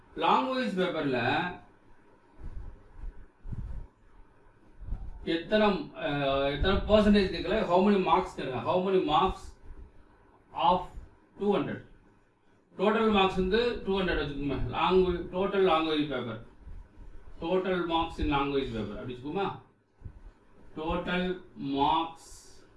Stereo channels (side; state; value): both; identical; correlation 1.00